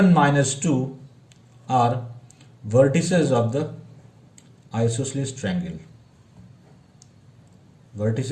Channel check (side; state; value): both; identical; correlation 1.00